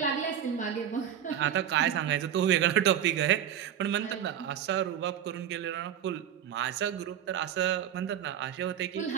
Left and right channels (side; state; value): left; quieter; 9.8 dB